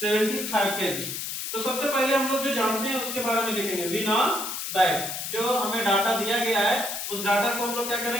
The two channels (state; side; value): noise; left; hiss, 5 dB below the sound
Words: kg। तो सबसे पहले हम लोग जो जानते हैं उसके बारे में देखेंगे। वी नो दैट जो हमें डाटा दिया गया है उस डाटा को हम लोग क्या